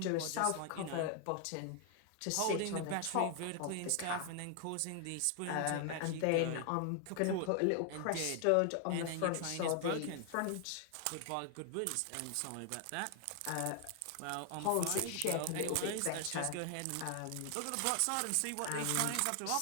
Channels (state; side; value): different; both; correlation 0.00